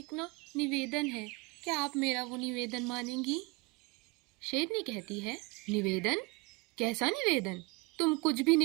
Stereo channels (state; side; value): quieter; left; 27.0 dB